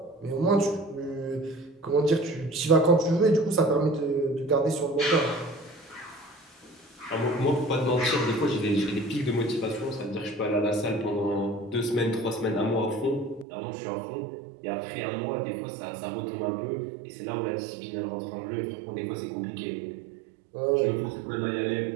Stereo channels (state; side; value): drops out; left; at 13.5 s